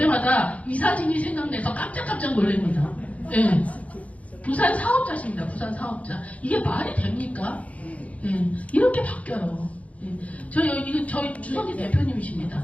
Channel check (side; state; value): right; late; 0.067 ms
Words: 이 사진이 생각나서 깜짝깜짝 놀랍니다. 예. 부산 사업자십니다. 부산 사업자. 이게 말이 됩니까? 예. 이렇게 바뀌어요. 저희 주석이 대표님이십니다.